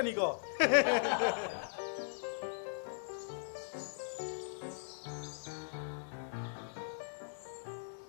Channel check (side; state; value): right; silent; digital silence